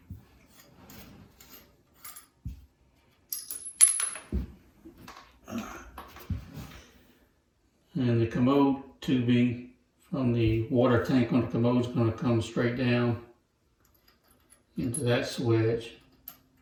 and the commode tubing from the water tank on the commode is going to come straight down into that swedge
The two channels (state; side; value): identical; both; correlation 1.00